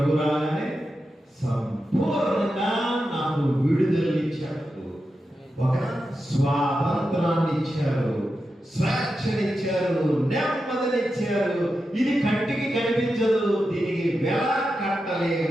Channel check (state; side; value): normal; both; correlation 0.89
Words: రాగానే సంపూర్ణంగా నాకు విడుదలనిచ్చాడు, ఒక స్వాతంత్రాన్ని ఇచ్చారు, స్వేచ్ఛనిచ్చారు, నెమ్మదినిచ్చారు. ఇది కంటికి కనిపించదు, దీనికి వెల